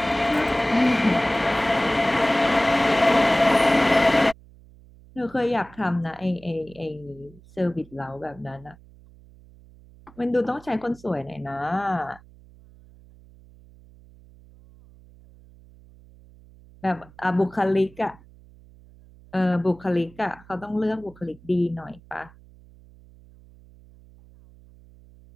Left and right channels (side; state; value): right; noise; hum, 24 dB below the sound